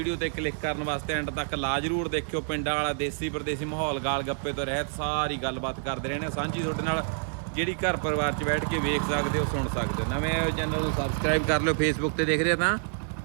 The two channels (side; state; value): left; silent; 59 dB below the other